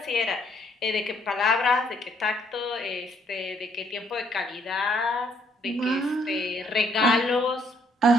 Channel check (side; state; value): both; normal; correlation 0.68